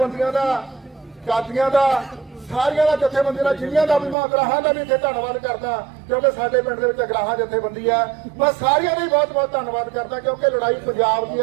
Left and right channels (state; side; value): drops out; left; at 4.2 s